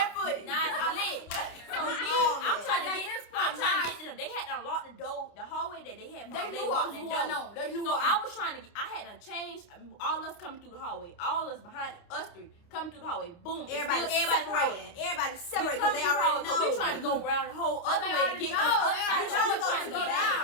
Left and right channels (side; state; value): right; late; 29 ms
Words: Now it's lit. So I'm trying to get to them. They had to unlock the door, the hallway that they had. They knew what was going on. They knew So what I was trying to. I had to change. All us coming through the hallway. All us behind us three coming through the hallway. Boom. Everybody separated. Everybody We separated come because through they the already hallway. know. So we trying to go around the whole other They way to already get know. to the other They side. already So know we it's trying gonna to go go down.